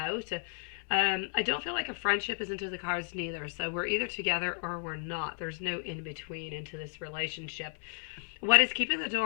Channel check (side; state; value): right; silent; 56 dB below the other